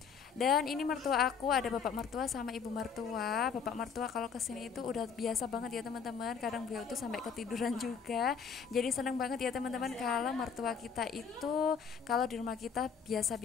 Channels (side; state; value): right; quieter; 6.3 dB